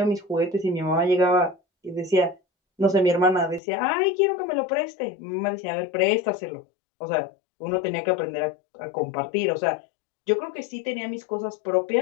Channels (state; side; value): drops out; right; at 3.6 s